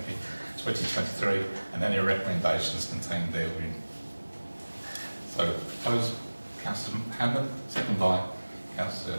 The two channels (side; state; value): both; inverted; correlation -1.00